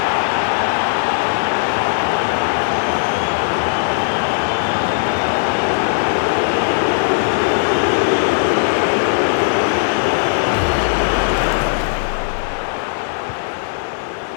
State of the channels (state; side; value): silent; right; 68 dB below the other